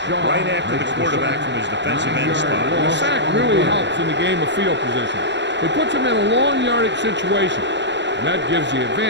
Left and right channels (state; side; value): late; left; 0.52 ms